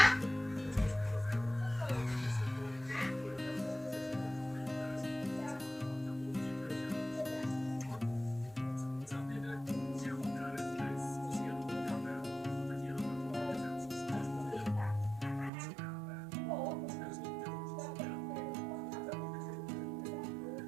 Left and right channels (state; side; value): drops out; left; at 15.5 s